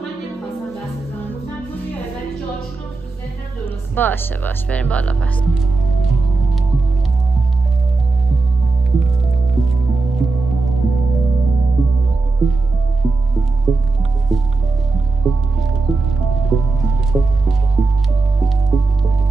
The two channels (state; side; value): quieter; left; 3.6 dB